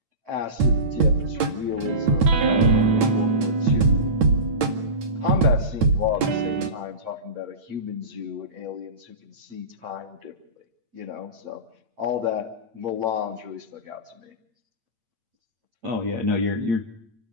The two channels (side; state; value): left; late; 8.8 ms